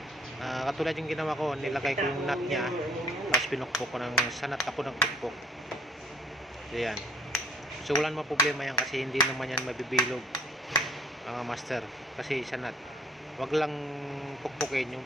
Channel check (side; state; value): both; normal; correlation 0.59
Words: katulad yung ginawa ko, nilagay ko yung nut niya, tapos pinukpok ko ng sanat ako ng pukpok. So yan. So wala naman problema yan kasi hindi naman yan mabibilog, mga master. Kasi sanat. Huwag lang pukpukin yung